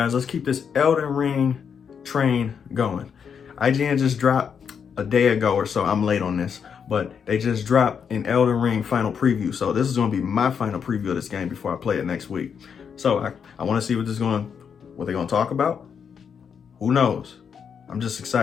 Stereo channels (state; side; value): quieter; right; 7.0 dB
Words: let's keep this Elden Ring train going. IGN just dropped a day ago or so. I'm late on this, but they just dropped an Elden Ring final preview. So this is going to be my final preview of this game before I play it next week. So I want to see what they're going to talk about. Who knows? I'm just